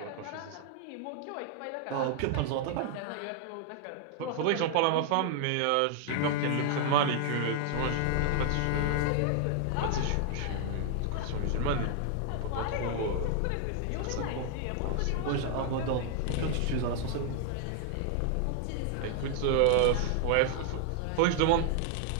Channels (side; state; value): both; different; correlation 0.00